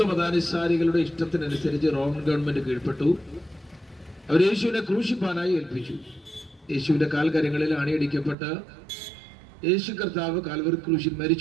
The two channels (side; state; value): left; drops out; at 8.3 s